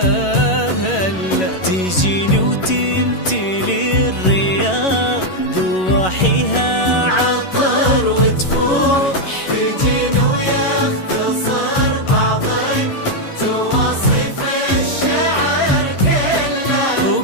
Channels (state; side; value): late; right; 11 ms